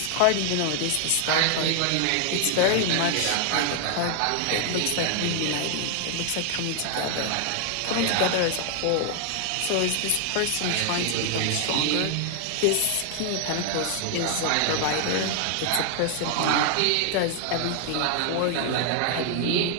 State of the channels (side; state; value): both; different; correlation 0.00